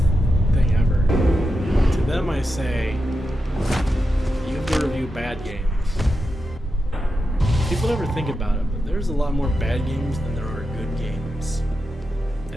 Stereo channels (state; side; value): normal; both; correlation 0.88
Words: thing ever. To them, I say you have to review bad games. People never think about it, but there's a lot more bad games than there are good games